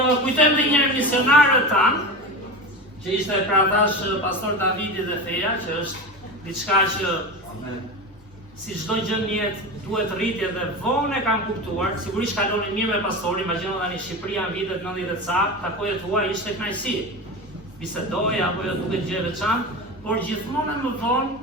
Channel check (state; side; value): normal; both; correlation 0.26